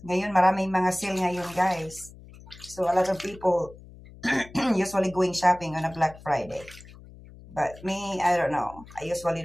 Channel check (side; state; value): left; noise; hum, 19 dB below the sound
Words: Ngayon, maraming mga sale ngayon, guys. So, a lot of people usually going shopping on a Black Friday. But me, I don't know. I usually